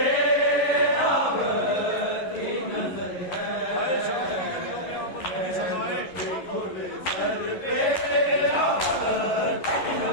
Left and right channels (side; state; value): right; late; 11 ms